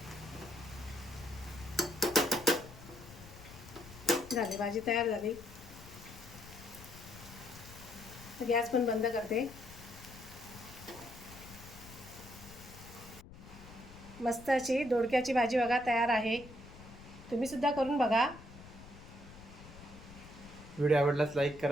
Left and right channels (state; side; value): noise; left; rumble, 17 dB below the sound